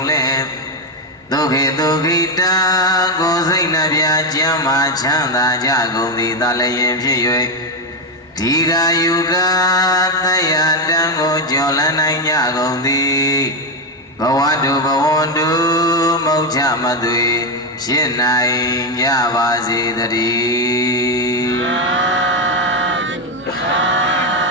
လေဒုက္ခိဒုက္ခိတာကိုယ်စိတ်နှပြကျမ်းမာချမ်းသာကြကုန်သည်သာလျင်ဖြစ်၍ဒီဃာယုကသယတံကိုကျော်လန်းနိုင်ကြကုန်သည်ဘဝတုဘဝန္တုမௌချမသွေဖြစ်နိုင်ကြပါစေတည်း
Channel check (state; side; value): normal; both; correlation 0.08